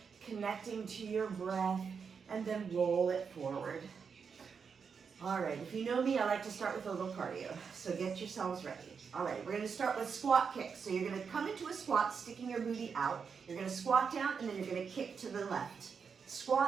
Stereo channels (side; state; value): left; quieter; 6.0 dB